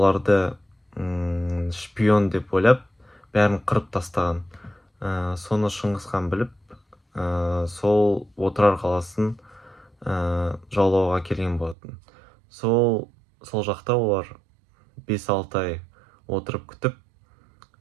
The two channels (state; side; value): drops out; left; at 11.8 s